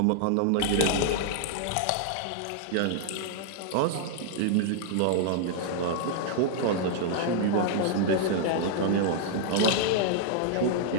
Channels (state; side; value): different; both; correlation -0.01